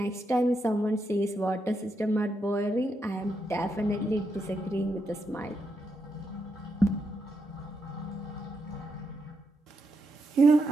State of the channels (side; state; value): both; normal; correlation 0.82